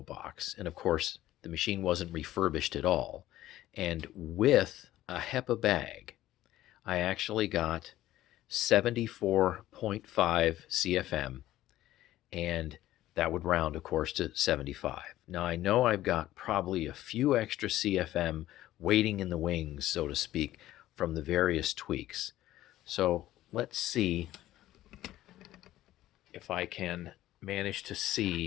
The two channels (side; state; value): right; quieter; 14.6 dB